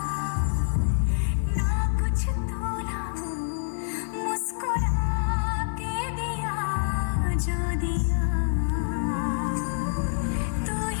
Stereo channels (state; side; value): silent; right; 60 dB below the other